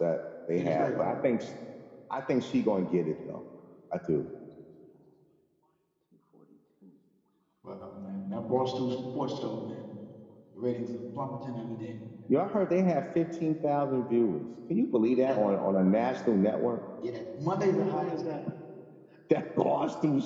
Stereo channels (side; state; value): both; identical; correlation 1.00